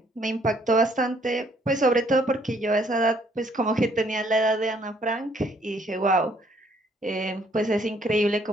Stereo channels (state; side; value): normal; both; correlation 0.65